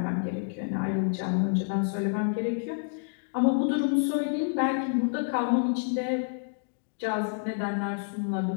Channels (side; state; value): right; silent; digital silence